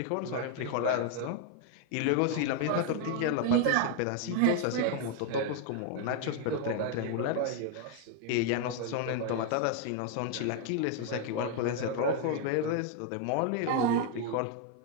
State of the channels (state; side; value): different; both; correlation 0.00